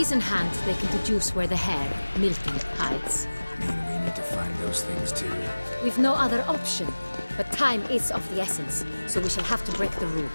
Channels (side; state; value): both; inverted; correlation -1.00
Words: in hand, they can deduce where the hare, Milton, hides. Mean we need to find those things too? We've no other option, but time is of the essence, so we shall have to break the